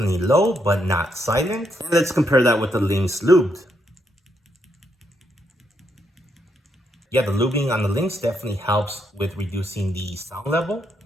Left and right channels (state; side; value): normal; both; correlation 0.78